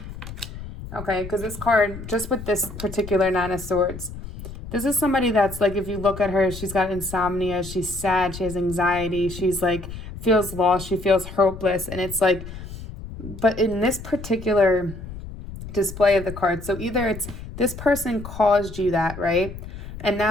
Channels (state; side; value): noise; left; rumble, 12 dB below the sound